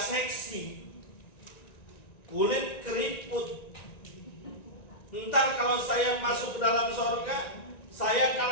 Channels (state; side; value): late; right; 1.9 ms